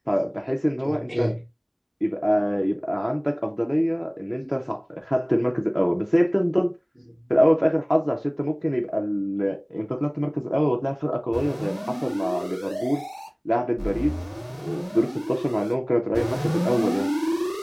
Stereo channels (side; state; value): both; identical; correlation 1.00